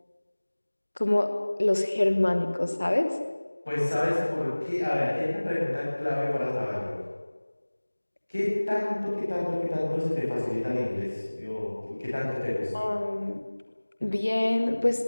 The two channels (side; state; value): both; inverted; correlation -1.00